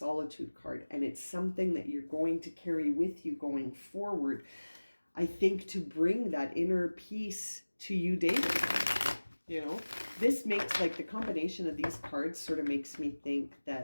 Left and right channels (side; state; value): both; inverted; correlation -1.00